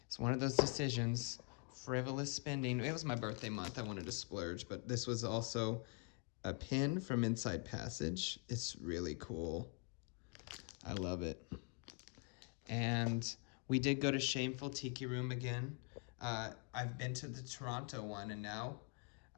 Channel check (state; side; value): quieter; right; 34.5 dB